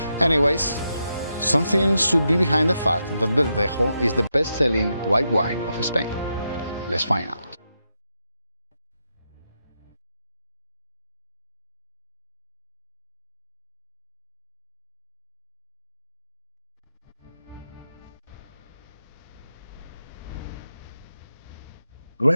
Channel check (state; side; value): inverted; both; correlation -0.84